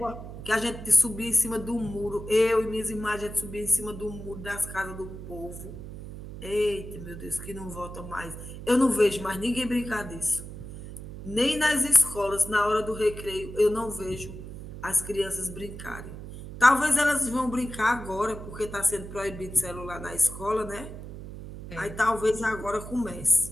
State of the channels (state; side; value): noise; right; hum, 11 dB below the sound